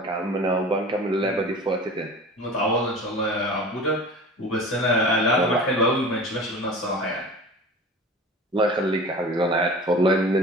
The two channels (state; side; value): normal; both; correlation 0.38